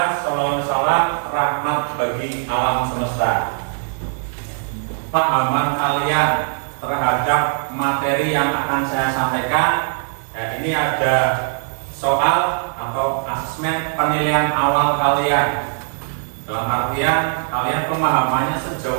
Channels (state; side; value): silent; left; 66 dB below the other